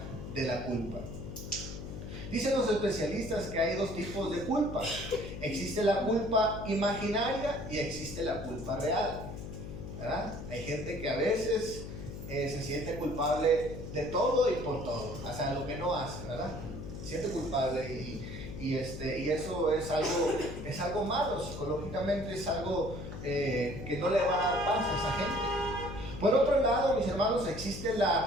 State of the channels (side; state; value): left; noise; hum, 9 dB below the sound